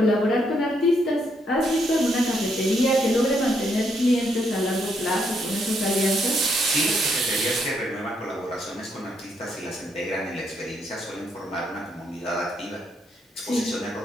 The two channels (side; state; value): both; normal; correlation 0.75